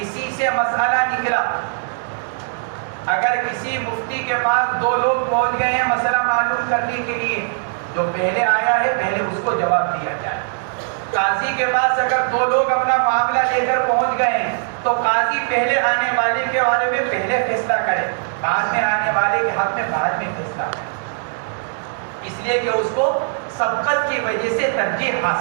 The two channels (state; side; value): silent; left; digital silence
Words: اسی سے مسئلہ نکلا, اگر کسی مفتی کے پاس 2 لوگ پہنچ گئے ہیں مسئلہ معلوم کرنے کے لیے, جو پہلے آیا ہے پہلے اس کو جواب دیا جائے. قاضی کے پاس اگر 2 لوگ اپنا معاملہ لے کر پہنچ گئے ہیں تو قاضی پہلے آنے والے کے بارے میں پہلے فیصلہ کرے, بعد میں آنے والے کے حق میں بعد میں فیصلہ کرے, اس لیے کہ اس کو سبقت کی وجہ سے ترجیح